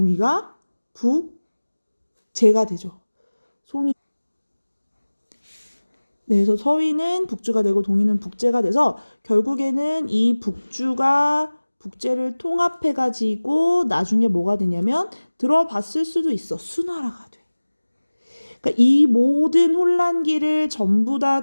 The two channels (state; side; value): inverted; both; correlation -1.00